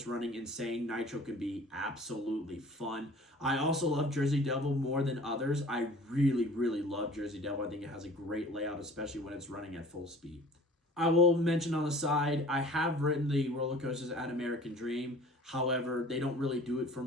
running insane. Nitro can be absolutely fun. I also love Jersey Devil more than others. I really, really love Jersey Devil. I think it has a great layout, especially when it's running at full speed. I will mention on the side, I have ridden the roller coasters at American Dream. However, they don't really do it for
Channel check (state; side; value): normal; both; correlation 0.47